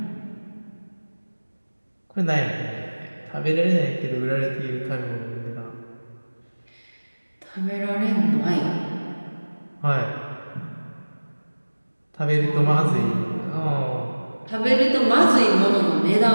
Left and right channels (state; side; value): inverted; both; correlation -1.00